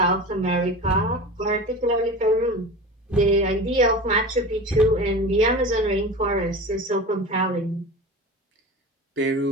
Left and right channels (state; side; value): normal; both; correlation 0.31